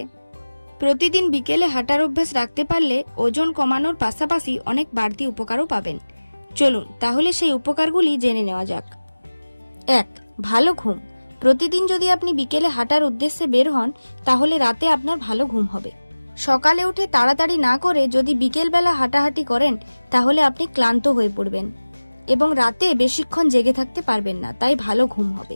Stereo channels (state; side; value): inverted; both; correlation -1.00